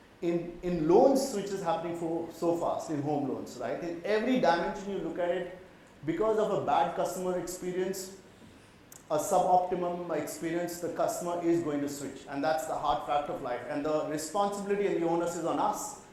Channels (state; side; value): identical; both; correlation 1.00